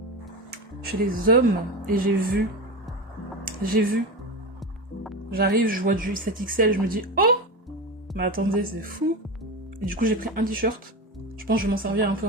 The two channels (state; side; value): normal; both; correlation 0.22